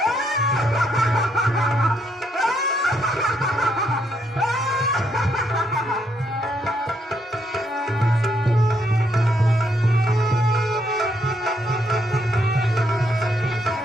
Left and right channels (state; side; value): normal; both; correlation 0.75